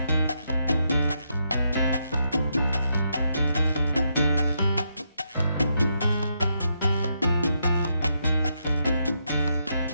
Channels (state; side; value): inverted; both; correlation -0.80